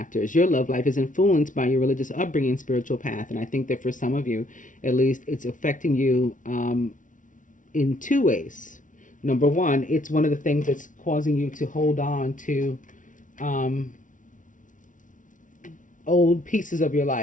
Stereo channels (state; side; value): late; right; 0.37 ms